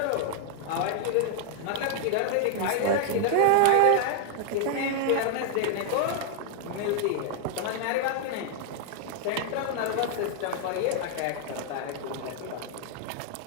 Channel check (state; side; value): different; both; correlation 0.00